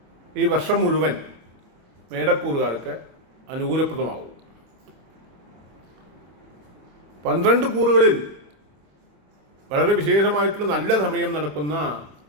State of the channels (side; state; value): left; late; 27 ms